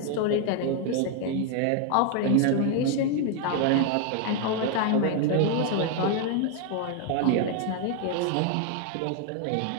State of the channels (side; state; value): both; different; correlation 0.00